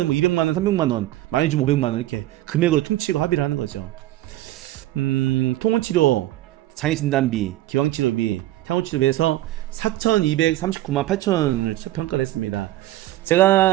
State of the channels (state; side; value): quieter; left; 15.6 dB